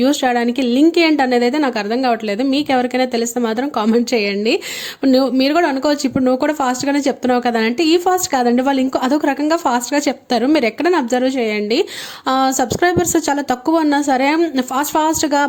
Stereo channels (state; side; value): identical; both; correlation 1.00